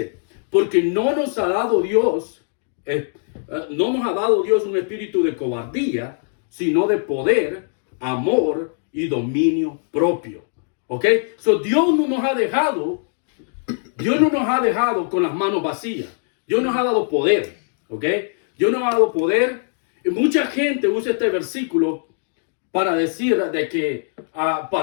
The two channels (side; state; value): right; silent; 65 dB below the other